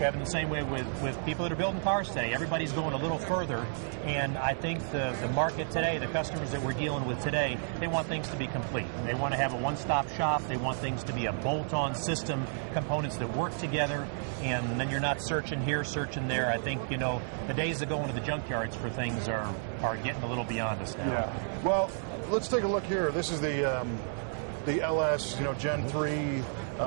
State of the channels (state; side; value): silent; left; 57 dB below the other